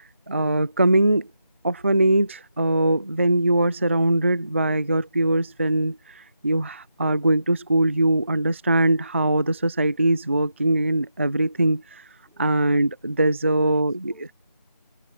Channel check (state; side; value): inverted; both; correlation -0.85